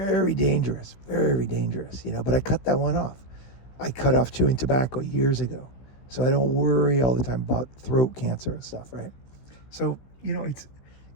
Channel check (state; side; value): late; right; 15 ms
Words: dangerous, but I cut that one off. I cut off chewing tobacco years ago. So I don't worry all the time about throat cancer and stuff, right? So,